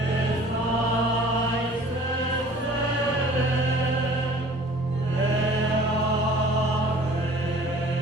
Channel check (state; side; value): normal; both; correlation 0.49